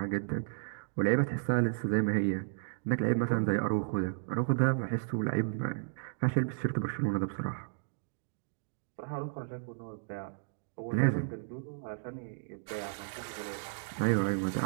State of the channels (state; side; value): silent; left; digital silence